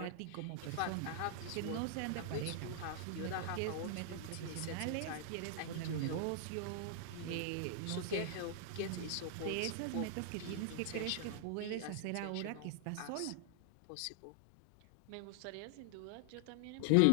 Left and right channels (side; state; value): both; different; correlation 0.00